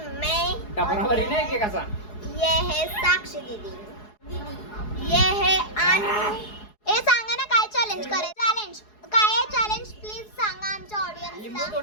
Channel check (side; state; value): right; late; 4.7 ms